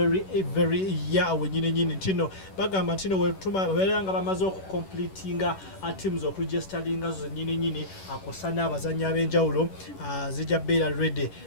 year wenyini ntino bagamba ntino wera nga bamaze okucompletinga teams okuregisteringa zo nyini akosana abazanyi ab'enjawulo zijja beera ready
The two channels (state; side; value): late; right; 11 ms